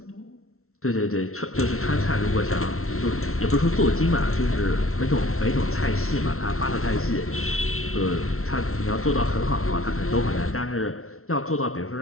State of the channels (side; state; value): right; late; 0.63 ms